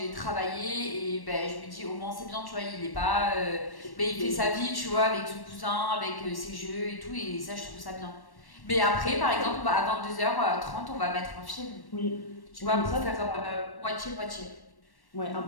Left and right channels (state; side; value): late; right; 1.1 ms